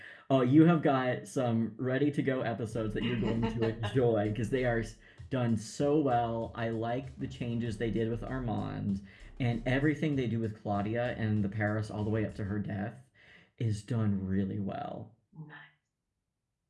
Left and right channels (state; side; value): identical; both; correlation 1.00